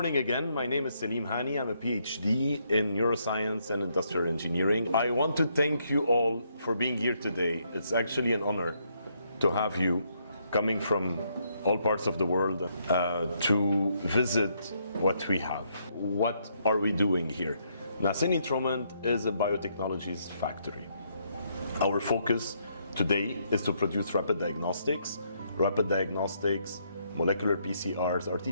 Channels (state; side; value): inverted; both; correlation -0.74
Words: again. My name is Selim Hani. I'm a PhD in neuroscience and industrial engineering. I want to thank you all for being here today. It's actually an honor to have you coming from all parts of the world to visit what we have. What are we doing here? NASENI-TROMENT is a biotechnologies factory. Our focus today is to produce rapid diagnostics, molecular PCRs,